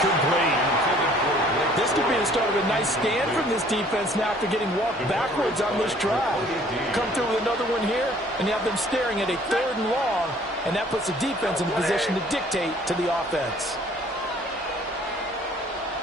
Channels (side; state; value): both; normal; correlation 0.56